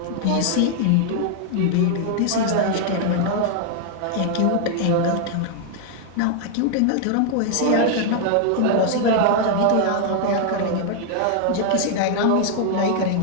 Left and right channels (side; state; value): both; different; correlation 0.00